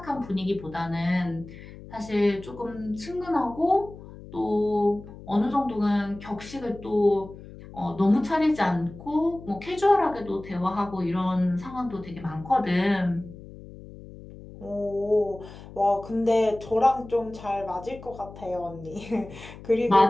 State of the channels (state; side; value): noise; left; hum, 16 dB below the sound